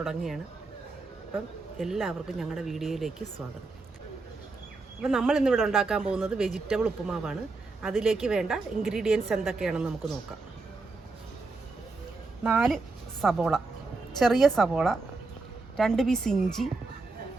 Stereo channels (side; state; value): left; quieter; 3.7 dB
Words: അപ്പം എല്ലാവർക്കും ഞങ്ങളുടെ വീഡിയോയിലേക്ക് സ്വാഗതം. അപ്പം നമ്മൾ ഇന്നിവിടെ ഉണ്ടാക്കാൻ പോകുന്നത് വെജിറ്റബിൾ ഉപ്പുമാവാണ്. അതിലേക്ക് വേണ്ട ഇൻഗ്രീഡിയൻസ് എന്തൊക്കെയാണെന്ന് നമുക്ക് നോക്കാം. 4 സബോള, ചെറിയ സബോള, 2 പീസ് ഇഞ്ചി,